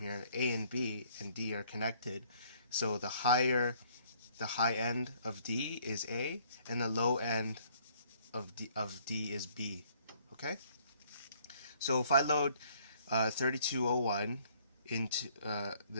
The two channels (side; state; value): both; inverted; correlation -0.62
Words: here, A and B and D are connected. So the high end of D is A, and the low end of D is B. Okay, so if I load 3201 into